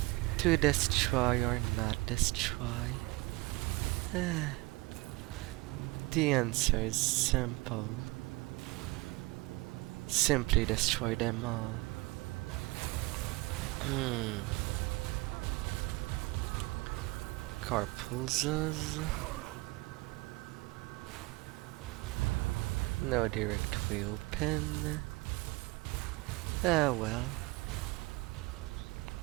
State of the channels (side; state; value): left; quieter; 23.1 dB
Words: To destroy or not destroy? The answer is simple. Simply destroy them all. Carpulzas. No direct way open. Ah well.